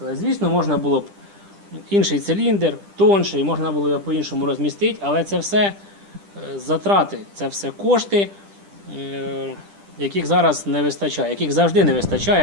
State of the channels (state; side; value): late; left; 10 ms